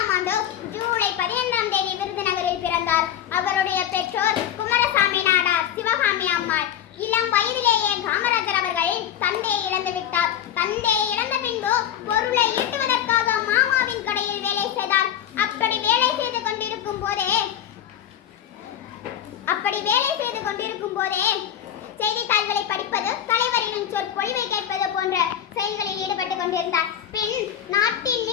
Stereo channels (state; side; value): quieter; right; 10.1 dB